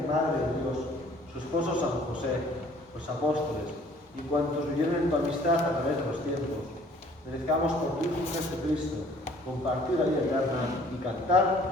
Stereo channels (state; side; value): normal; both; correlation 0.56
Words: Madre de Dios, su esposo San José, los apóstoles y cuantos vivieron en tu amistad a través de los tiempos, merezcamos por tu Hijo Jesucristo compartir la vida eterna y